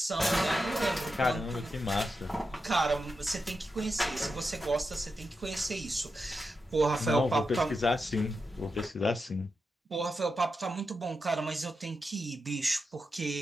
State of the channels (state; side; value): normal; both; correlation 0.88